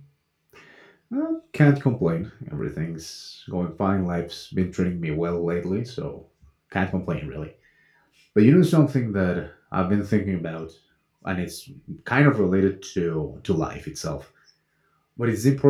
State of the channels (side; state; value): both; identical; correlation 1.00